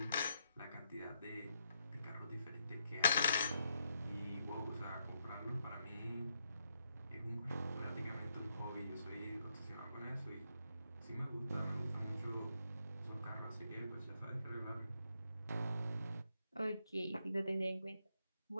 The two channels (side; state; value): both; inverted; correlation -0.78